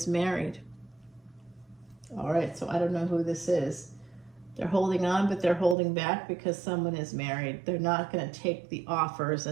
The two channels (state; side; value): drops out; left; at 5.8 s